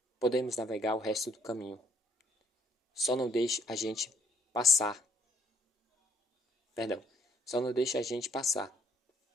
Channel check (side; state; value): both; normal; correlation 0.67